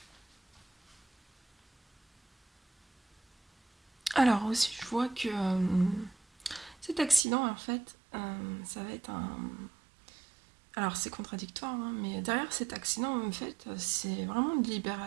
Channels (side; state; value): left; drops out; at 7.2 s